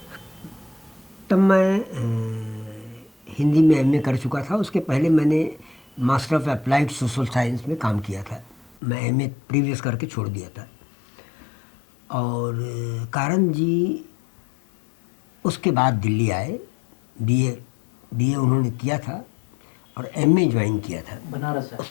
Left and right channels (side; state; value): right; drops out; at 8.8 s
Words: तब मैं हिंदी में एमए कर चुका था। उसके पहले मैंने master of applied social science में काम किया था। मैं एमए प्रीवियस करके छोड़ दिया था। और कारण जी उसके बाद दिल्ली आए। बीए बीए उन्होंने किया था और एमए ज्वाइन किया था बनारस है।